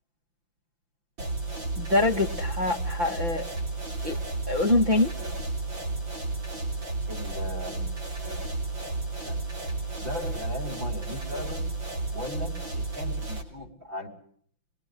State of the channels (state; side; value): late; left; 5.8 ms